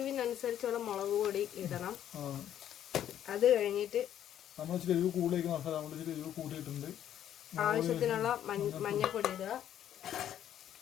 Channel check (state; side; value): quieter; right; 10.7 dB